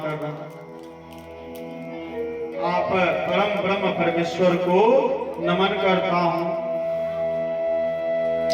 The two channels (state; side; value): identical; both; correlation 1.00